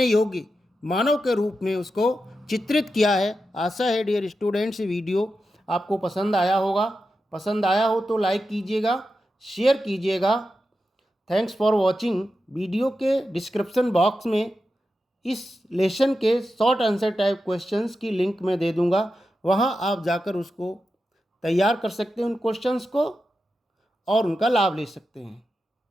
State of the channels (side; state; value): both; normal; correlation 0.90